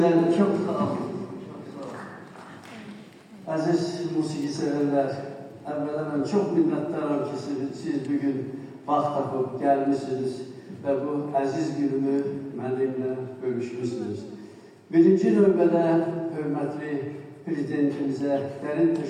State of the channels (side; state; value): both; identical; correlation 1.00